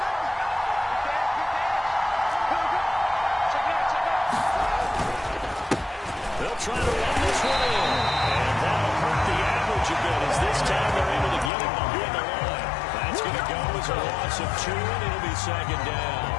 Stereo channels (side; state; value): right; drops out; at 11.5 s